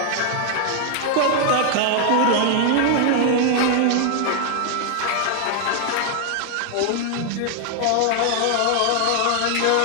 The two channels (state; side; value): different; both; correlation 0.00